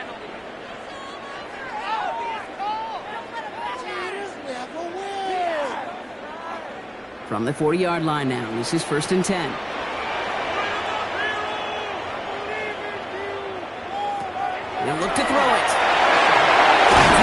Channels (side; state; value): both; identical; correlation 1.00